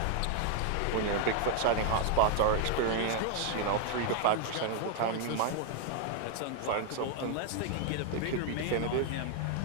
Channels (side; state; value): both; different; correlation 0.00